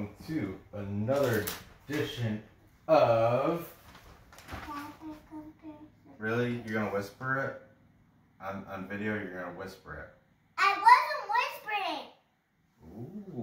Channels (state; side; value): identical; both; correlation 1.00